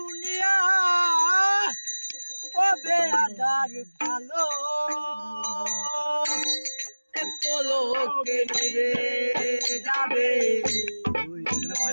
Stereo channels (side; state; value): both; inverted; correlation -1.00